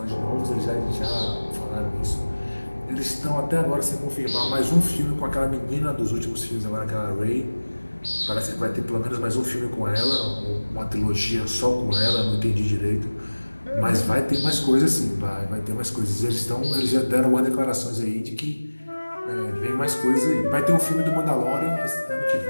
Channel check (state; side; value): inverted; both; correlation -1.00